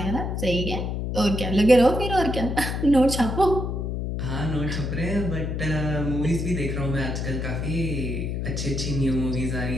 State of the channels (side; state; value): left; noise; hum, 2 dB below the sound